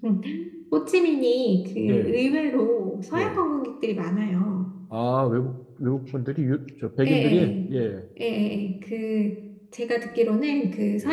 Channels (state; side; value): identical; both; correlation 1.00